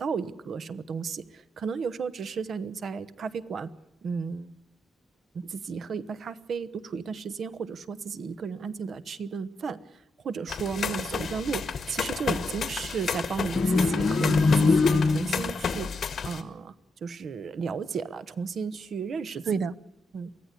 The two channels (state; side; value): normal; both; correlation 0.81